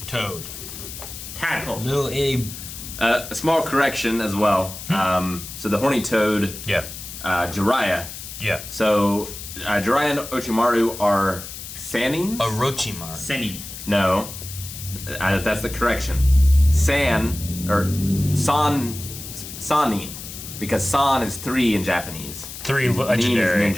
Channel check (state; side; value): noise; left; hiss, 11 dB below the sound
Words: Toad. Tadpole. Little Abe. a small correction as well. So the horny toad, Yeah. Jiraiya. Yeah. So Jiraiya and Orochimaru are Sanins? Orochimaru. Senin. No, that's the correction. Sanin, because san is 3 in Japanese. 3 Nin legendary. is